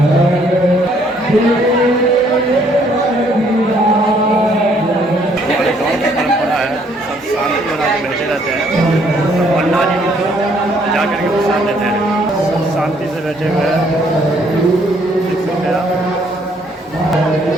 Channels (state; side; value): normal; both; correlation 0.66